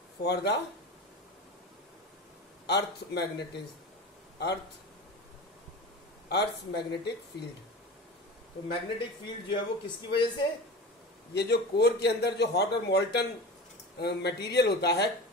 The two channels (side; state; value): both; normal; correlation 0.31